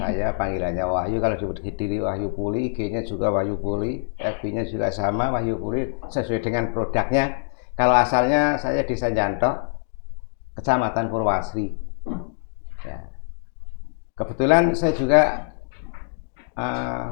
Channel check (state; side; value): silent; right; digital silence